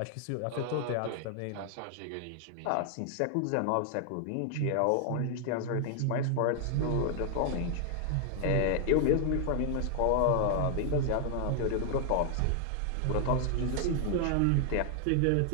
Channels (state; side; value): different; both; correlation 0.00